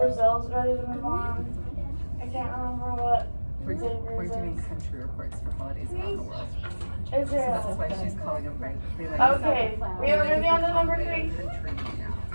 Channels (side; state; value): both; inverted; correlation -1.00